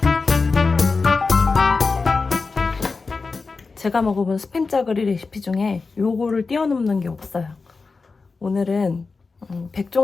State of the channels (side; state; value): right; quieter; 4.3 dB